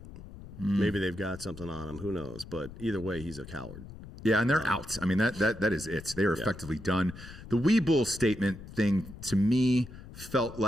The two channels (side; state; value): left; noise; rumble, 15 dB below the sound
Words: Maybe they've got something on him. Who knows? But either way, he's a coward. Yeah, and they're out. I mean, that is it. They are effectively done. The Weeble statement thing, to me, felt